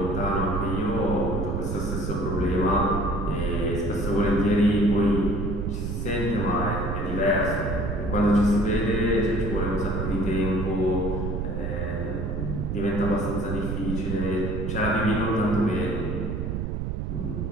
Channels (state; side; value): noise; right; rumble, 2 dB below the sound